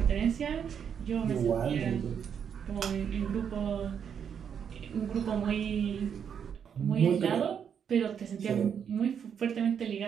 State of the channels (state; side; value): quieter; left; 7.7 dB